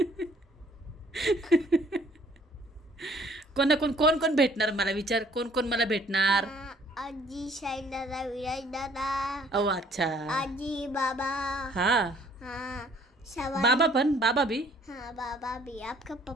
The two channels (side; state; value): both; normal; correlation 0.59